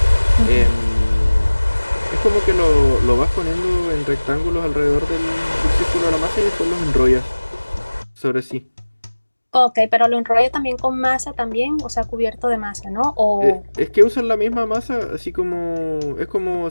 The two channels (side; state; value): both; inverted; correlation -1.00